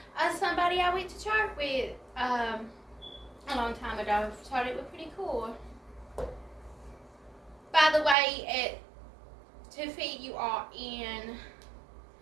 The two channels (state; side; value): drops out; left; at 8.2 s